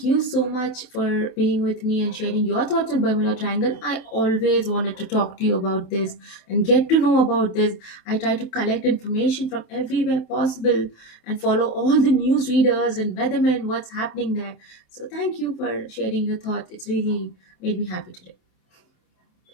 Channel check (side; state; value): right; late; 27 ms